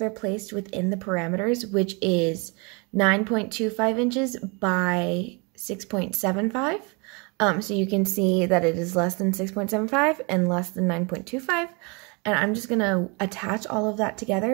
placed within the parameters, which is 9.25 inches by 6.75. So you can see that it is less than 6.75 and less than 9.25. And I'm just going to attach all of that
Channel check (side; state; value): left; quieter; 30.8 dB